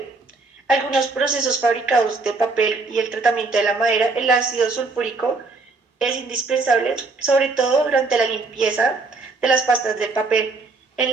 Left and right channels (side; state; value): left; quieter; 3.8 dB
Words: Algunos procesos fabricados de papel y el tratamiento de la madera, el ácido sulfúrico es indispensable, sobre todo durante la limpieza de las pastas de papel, en